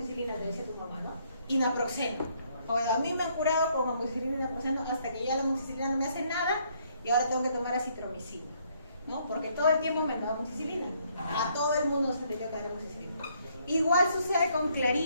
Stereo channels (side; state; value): both; inverted; correlation -0.69